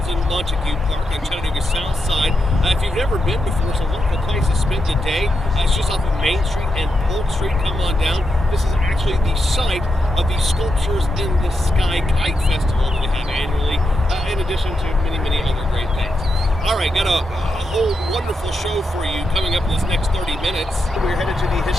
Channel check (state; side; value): normal; both; correlation 0.85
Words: in Montague Park on Chattanooga South Side. If you've never been before, it's a wonderful place to spend the day. It's just off of Main Street and Polk Street. Come on down. This is actually the site of the Sculptures in the Sky Kite Festival that we have annually, in addition to many, many other great things. All right, got a whole wonderful show for you coming up in this next 30 minutes. We're headed to the